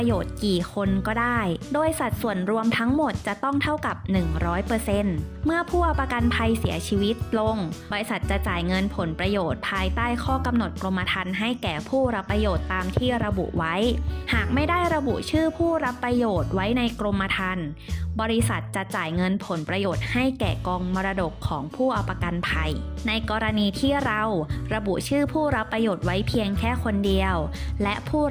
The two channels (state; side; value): identical; both; correlation 1.00